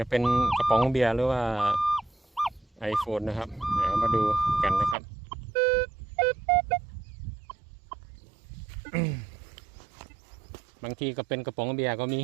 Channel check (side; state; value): left; drops out; at 5.0 s